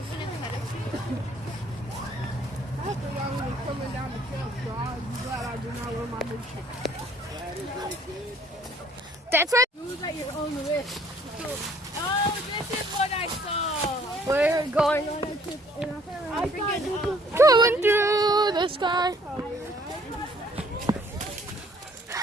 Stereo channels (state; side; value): normal; both; correlation 0.60